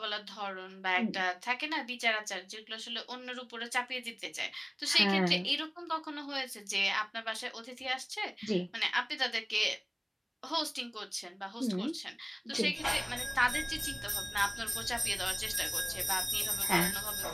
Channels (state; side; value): identical; both; correlation 1.00